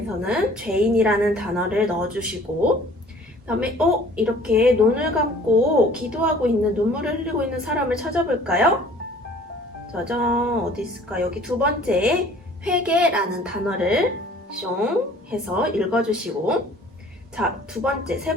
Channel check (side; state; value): both; normal; correlation 0.51